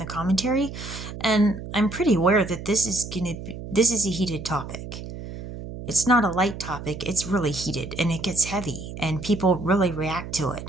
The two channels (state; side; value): noise; right; hum, 10 dB below the sound